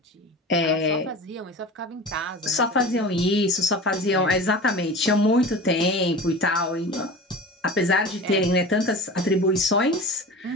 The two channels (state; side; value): normal; both; correlation 0.34